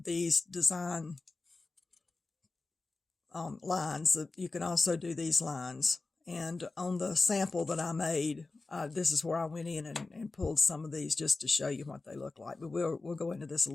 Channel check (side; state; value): right; quieter; 3.6 dB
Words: these design lines. You can also do these lines. And on the sample that I made, this is where I went in and pulled some of these just to show you what they look like. But we'll go into this a